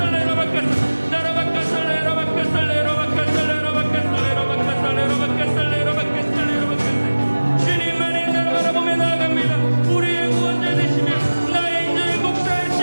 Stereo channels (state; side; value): inverted; both; correlation -1.00